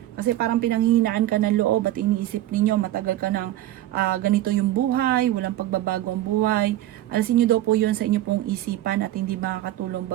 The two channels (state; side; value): quieter; left; 14.3 dB